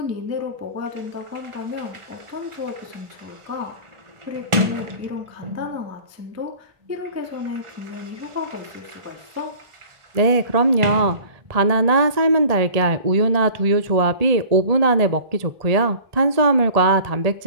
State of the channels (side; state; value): left; late; 1.4 ms